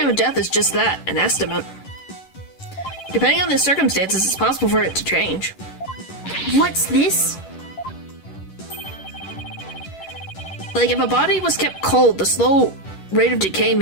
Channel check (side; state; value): right; late; 11 ms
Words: of death is just that, an estimate. Depending on the circumstances, it's possible for it to change. What's this? Like, if a body was kept cold, the slow rate of decay